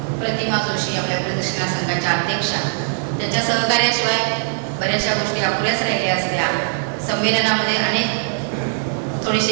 प्रतिमा जोशी आपल्या प्रदर्शना संघाच्या अध्यक्षा, त्यांच्या सहकार्याशिवाय बऱ्याचशा गोष्टी अपुऱ्याच राहिल्या असत्या. संमेलनामध्ये अनेक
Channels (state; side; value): silent; left; digital silence